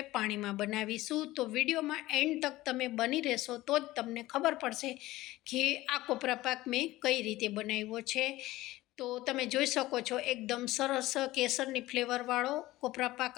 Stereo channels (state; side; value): quieter; right; 17.4 dB